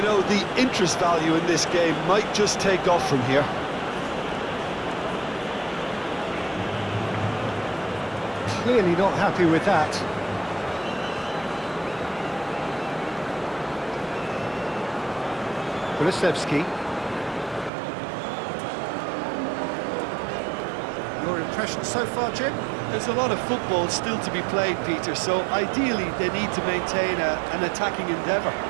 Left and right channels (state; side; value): drops out; left; at 17.7 s